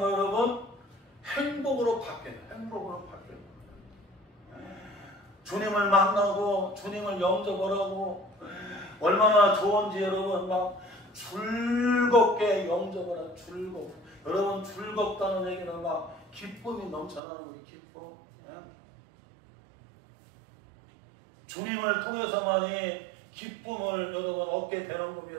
여러분? 행복으로 바뀌는 거예요. 행복으로 바뀌는 거예요. 주님을 만나고 주님을 영접을 하고 얼마나 좋은지 여러분 막 즐겁게 영접을 하고 여러분 즐겁다는 얘기는 막 기쁨이 넘쳐나는 거예요. 기쁨. 주님을 통해서만이 기쁨을 여러분 얻게 되는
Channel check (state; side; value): drops out; left; at 17.2 s